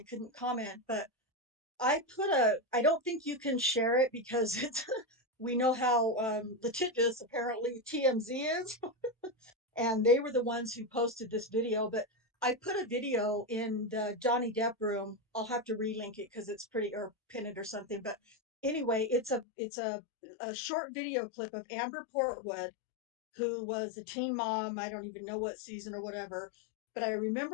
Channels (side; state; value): right; drops out; at 19.5 s